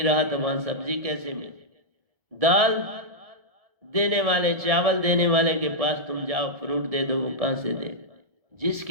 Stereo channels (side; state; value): left; late; 1.7 ms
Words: रहा तो वहां सब्जी कैसे मिले? दाल देने वाले, चावल देने वाले के पास तुम जाओ फ्रूट दे दो, वो कहां से दे?